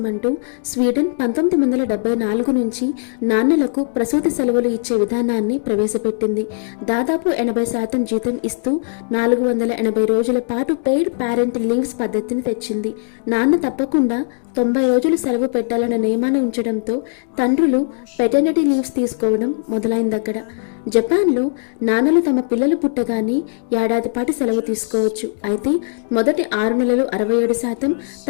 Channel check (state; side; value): silent; right; digital silence